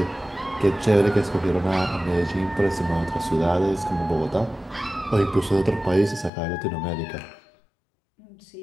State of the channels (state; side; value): drops out; right; at 6.3 s